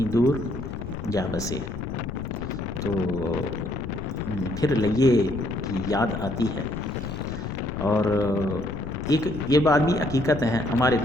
دور جا بسے، تو پھر لئے کی یاد آتی ہے۔ اور ایک یہ بات بھی حقیقت ہے، ہمارے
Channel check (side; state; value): left; noise; rumble, 12 dB below the sound